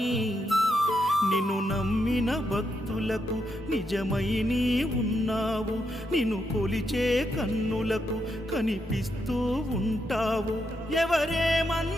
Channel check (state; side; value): normal; both; correlation 0.81